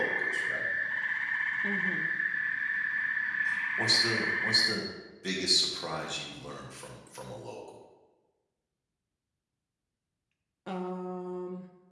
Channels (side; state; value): both; identical; correlation 1.00